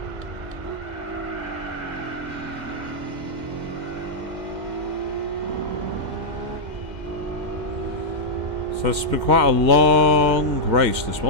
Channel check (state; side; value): late; left; 2.1 ms